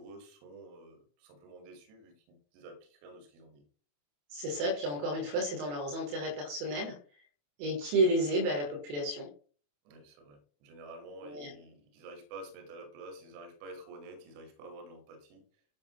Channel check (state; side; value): late; left; 28 ms